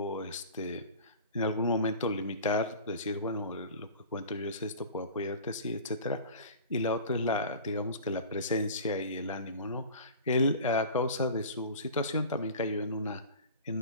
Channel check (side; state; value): both; inverted; correlation -0.39